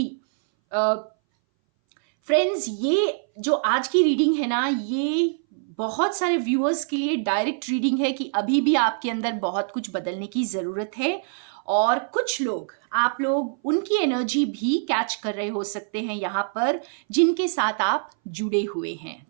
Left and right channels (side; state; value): left; silent; 60 dB below the other